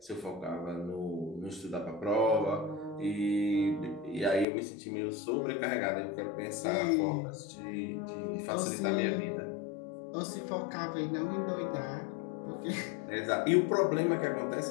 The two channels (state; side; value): drops out; right; at 4.5 s